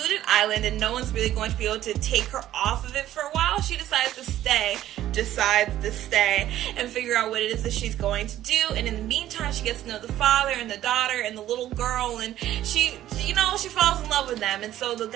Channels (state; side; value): quieter; left; 13.0 dB